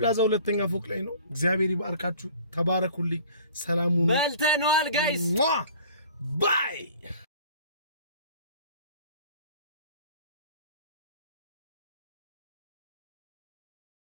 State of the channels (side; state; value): both; inverted; correlation -0.48